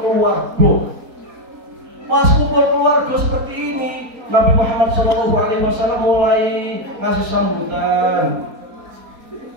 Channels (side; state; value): left; late; 4.3 ms